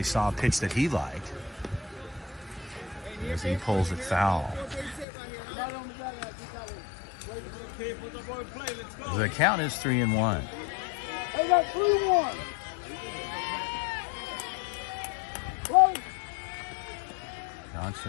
saw a pitch that he liked as he pulls it foul. The count is 3-1. They got 3-1.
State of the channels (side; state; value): right; drops out; at 5.1 s